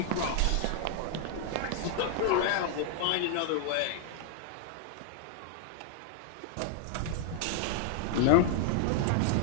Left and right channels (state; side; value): different; both; correlation 0.00